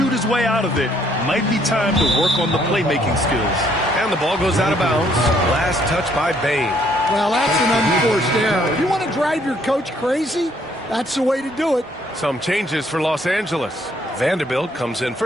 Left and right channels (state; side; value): normal; both; correlation 0.67